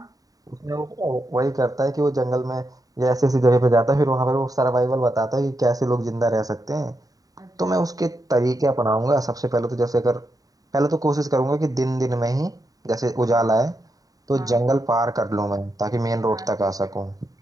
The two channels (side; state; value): left; late; 0.18 ms